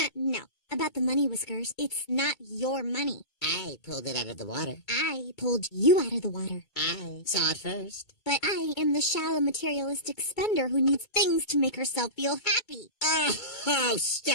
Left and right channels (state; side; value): late; right; 2.2 ms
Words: No. About the money, Whiskers. It's not your money. I pulled it out of the water. I pulled you out of the water. I saw it first. But I am the shallow materialistic spender who needs things to make herself feel happy. Oh,